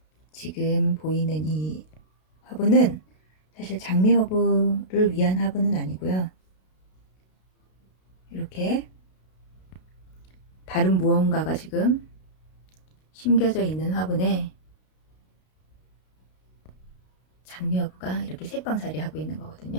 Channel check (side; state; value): right; late; 32 ms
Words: 지금 보이는 이 화분은 사실 장미허브를 위한 화분은 아니고요. 이렇게 다른 무언가가 지금 심겨져 있는 화분에 장미허브가 이렇게 새빵살이 하고 있는